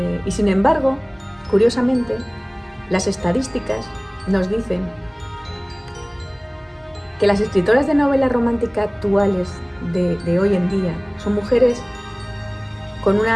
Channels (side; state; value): both; identical; correlation 1.00